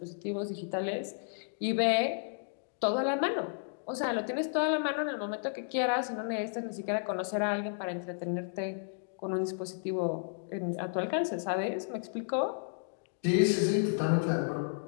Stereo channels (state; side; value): silent; right; digital silence